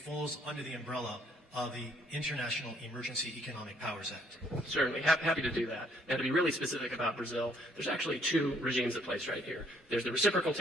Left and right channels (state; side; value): normal; both; correlation 0.65